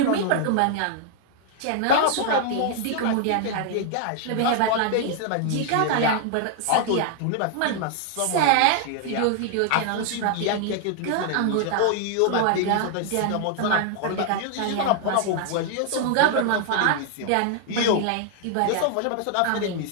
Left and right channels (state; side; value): different; both; correlation 0.00